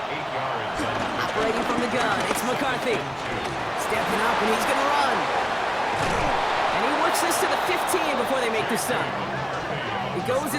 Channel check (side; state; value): both; identical; correlation 1.00